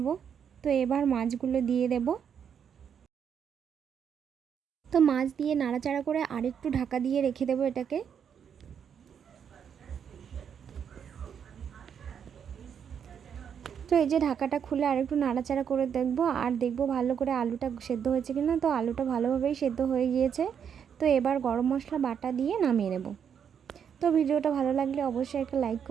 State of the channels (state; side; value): quieter; left; 7.8 dB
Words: তো এবার মাছগুলো দিয়ে দেব। তো মাছ দিয়ে নাড়াচাড়া করে আরেকটু ঢাকা দিয়ে রেখে দেব এটাকে। তো এই যে ঢাকাটা খুলে আরেকটু নাড়াচাড়া করে দেখব ভালো করে আলুটা সেদ্ধ হয়েছে কিনা। তো আলুটা ভালোভাবেই সেদ্ধ হয়ে গিয়েছে। তো এবার গরম মশলা বাটা দিয়ে নামিয়ে নেব। তো ভিডিওটা ভালো লাগলে অবশ্যই একটা লাইক